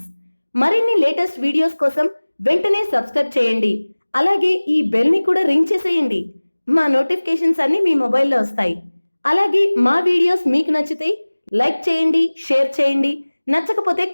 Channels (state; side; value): inverted; both; correlation -1.00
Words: మరిన్ని లేటెస్ట్ వీడియోస్ కోసం వెంటనే సబ్స్క్రైబ్ చేయండి. అలాగే ఈ బెల్ ని కూడా రింగ్ చేసేయండి. మా నోటిఫికేషన్స్ అన్ని మీ మొబైల్లో వస్తాయి. అలాగే మా వీడియోస్ మీకు నచ్చితే లైక్ చేయండి, షేర్ చేయండి, నచ్చకపోతే